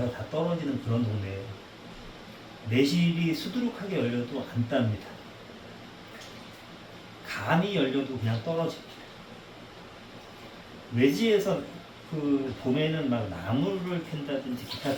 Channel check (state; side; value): identical; both; correlation 1.00